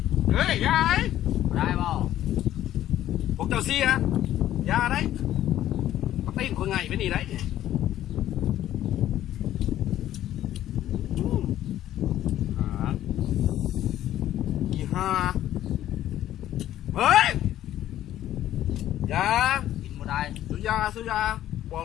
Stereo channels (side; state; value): right; quieter; 12.7 dB